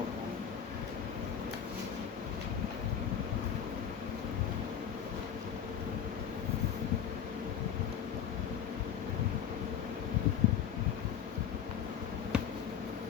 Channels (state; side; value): quieter; right; 8.6 dB